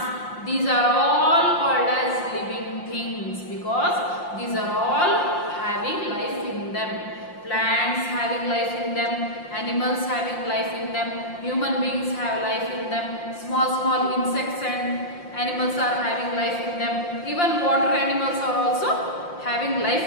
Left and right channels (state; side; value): late; right; 5.7 ms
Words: These are all called as living things because these are all having life in them. Plants having life in them, animals having life in them, human beings have life in them, small insects and animals are having life in them, even water animals are also having life